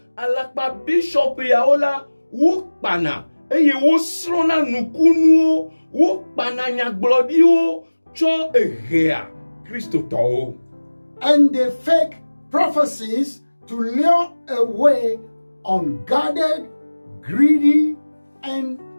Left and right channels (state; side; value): inverted; both; correlation -1.00